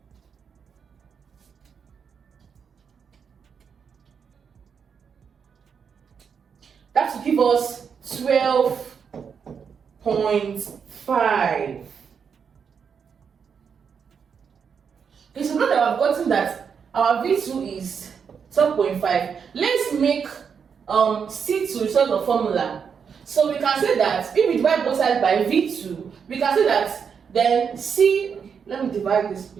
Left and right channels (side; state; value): left; quieter; 6.6 dB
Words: That will give us 12.5. Okay, so now that I've gotten that our V2 is 12.5, let's make C2 result of formula. So we can say that if we divide both sides by V2, we can say that then let me divide this